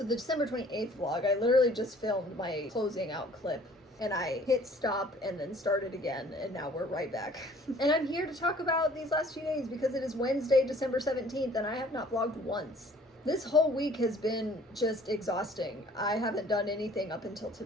the December 28th vlog, I literally just filmed my closing out clip and I hit stop and then started again, and now we're right back. And I'm here to talk about these last few days because it is Wednesday, December 17th, and I have not vlogged once. This whole week has been just exhausting. I haven't done anything up until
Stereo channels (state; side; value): normal; both; correlation 0.54